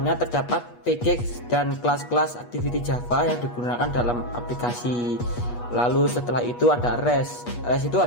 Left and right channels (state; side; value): late; right; 8.3 ms